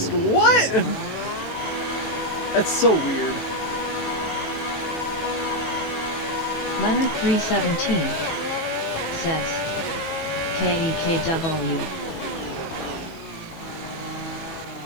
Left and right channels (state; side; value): late; right; 18 ms